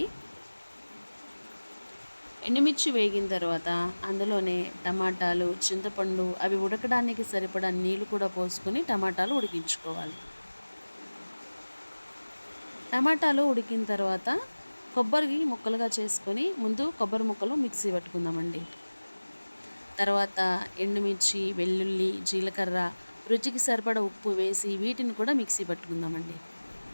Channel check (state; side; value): inverted; both; correlation -1.00